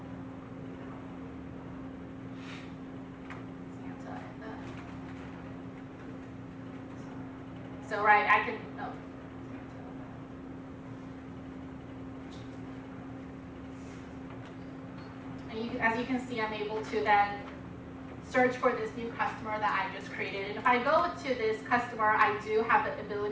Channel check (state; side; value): identical; both; correlation 1.00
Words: So right, I can. Oh. And as you can see, I'm able to then search for this new customer that I just created. And if I go to this customer, I do have the